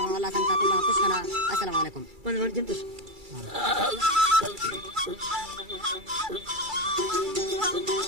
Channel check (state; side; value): late; left; 2.3 ms